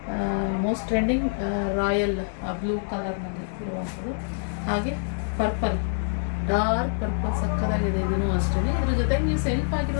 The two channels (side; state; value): right; silent; digital silence